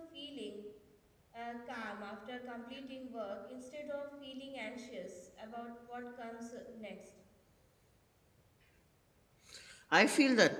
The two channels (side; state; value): both; identical; correlation 1.00